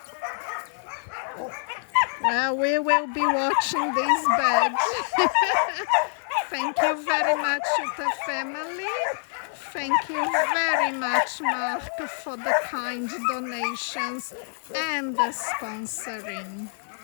Well, we will be watching these beds. Thank you very much, Jutta family. Thank you very much, Mark, for the kind donations and the sponsoring.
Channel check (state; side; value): silent; right; digital silence